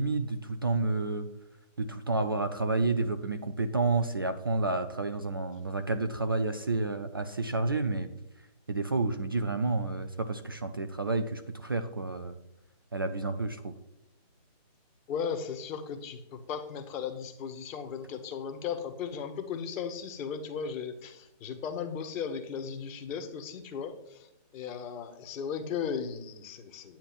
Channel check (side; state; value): both; inverted; correlation -0.52